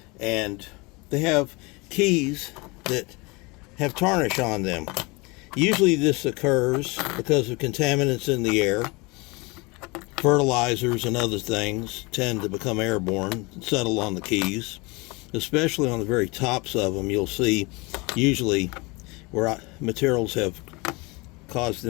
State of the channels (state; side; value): quieter; right; 26.4 dB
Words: and they have keys that have tarnish on them. Usually this occurs because of contaminants in the air. Fertilizers and other things tend to become airborne and settle on the keys, especially on the very tops of them. You'll see usually where materials have caused